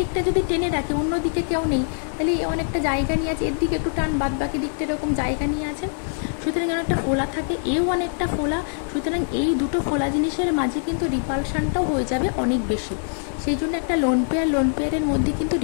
যদি টেনে রাখে, অন্য দিকে কেউ নেই, তাহলে এ অনেকটা জায়গা নিয়ে আছে, এর দিকে একটু টান, বাদ বাকি দিকটা এরকম জায়গা নিয়ে আছে, সুতরাং অনেকটা ফোলা থাকে, এও অনেকটা ফোলা, সুতরাং এই দুটো ফোলা জিনিসের মাঝে কিন্তু রিপালশনটাও হয়ে যাবে অনেক বেশি। সেই জন্য একটা লোন পেয়ারের মধ্যে কিন্তু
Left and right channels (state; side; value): silent; right; digital silence